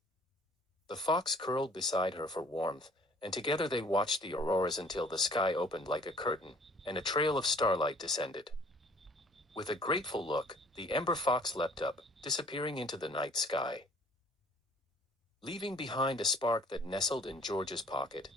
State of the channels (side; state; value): both; normal; correlation 0.55